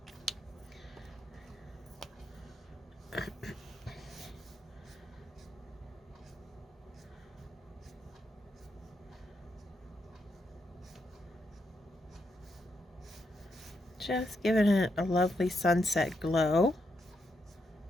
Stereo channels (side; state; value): both; normal; correlation 0.81